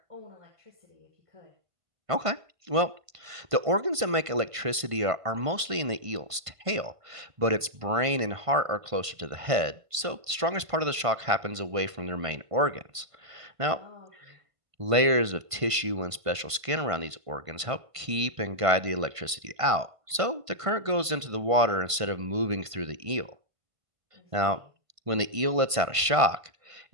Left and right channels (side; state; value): left; late; 1.5 ms